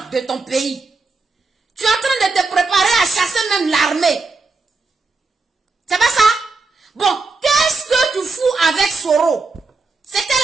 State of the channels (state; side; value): quieter; left; 3.9 dB